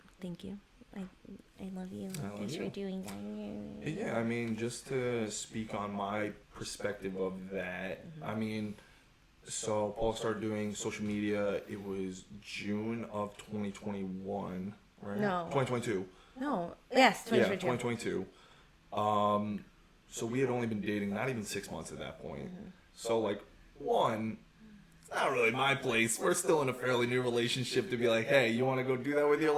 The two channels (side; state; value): both; identical; correlation 1.00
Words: thank you. I love you. I love Thanks you. for doing that. Yeah, I mean, just to speak on my perspective of that, I mean, so Paul started doing social media, it was June of 2021, right? No. 2022. No. Yes. Yeah, 2022. 2022. So we had only been dating not even 6 months at that point. So, like, one, it's not really my place. We're still in a fairly new relationship to be like, hey, you want to go do that with your